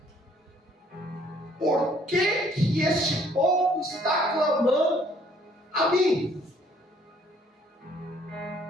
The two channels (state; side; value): normal; both; correlation 0.62